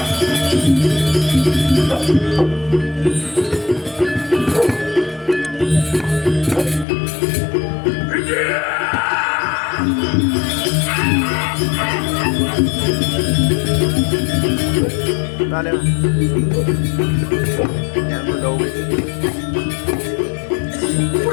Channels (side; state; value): right; drops out; at 6.9 s